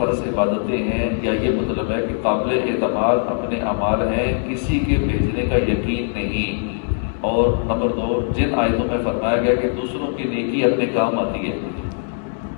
عبادتیں ہیں، یا یہ مطلب ہے کہ قابل اعتماد اپنے اعمال ہیں، کسی کے بھیجنے کا یقین نہیں۔ اور نمبر 2، جن آیتوں میں فرمایا گیا کہ دوسروں کی نیکی اپنے کام آتی ہے،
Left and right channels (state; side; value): silent; right; digital silence